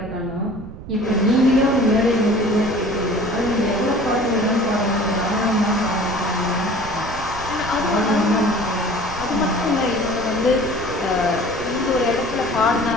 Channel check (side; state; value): right; noise; rumble, 13 dB below the sound